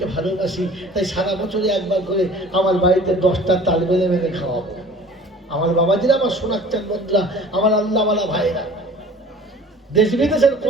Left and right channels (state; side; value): normal; both; correlation 0.47